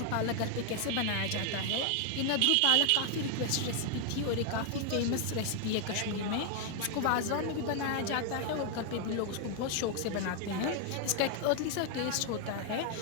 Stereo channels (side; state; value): both; different; correlation 0.00